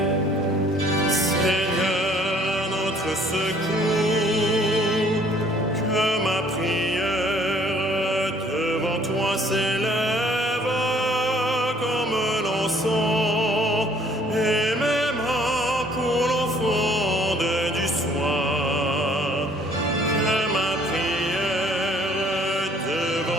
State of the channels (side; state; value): both; normal; correlation 0.59